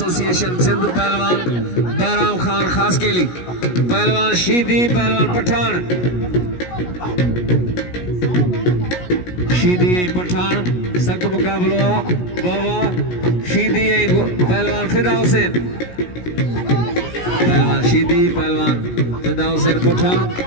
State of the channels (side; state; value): right; late; 17 ms